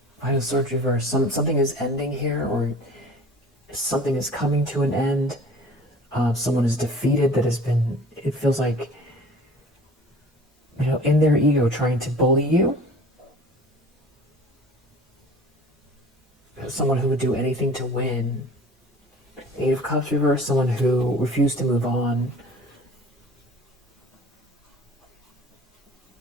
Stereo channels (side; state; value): both; normal; correlation 0.45